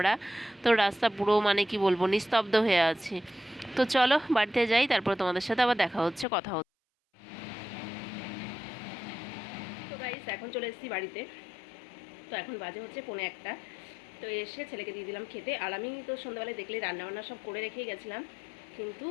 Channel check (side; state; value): right; drops out; at 6.2 s